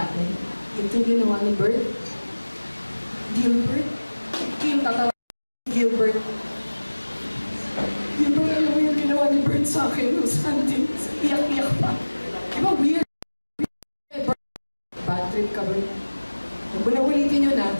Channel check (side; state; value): both; inverted; correlation -1.00